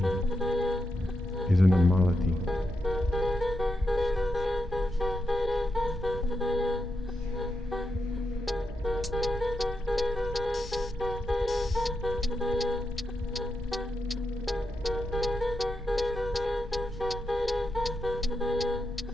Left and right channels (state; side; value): normal; both; correlation 0.85